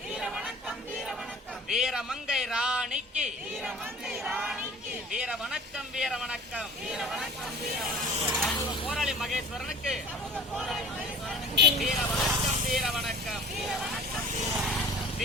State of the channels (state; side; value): normal; both; correlation 0.42